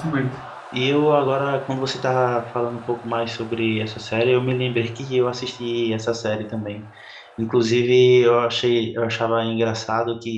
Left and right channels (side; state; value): both; identical; correlation 1.00